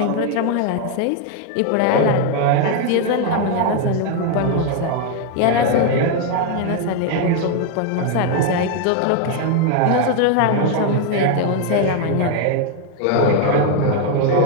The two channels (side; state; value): both; different; correlation 0.01